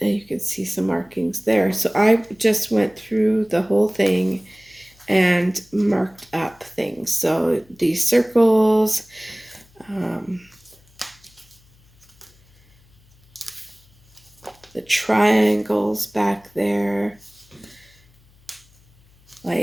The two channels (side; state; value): left; noise; hum, 30 dB below the sound